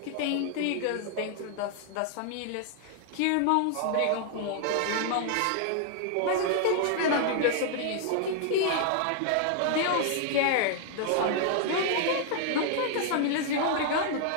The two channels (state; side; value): different; both; correlation 0.00